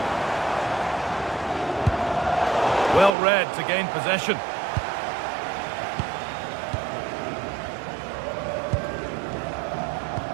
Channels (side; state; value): left; drops out; at 3.1 s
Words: Well read to gain possession.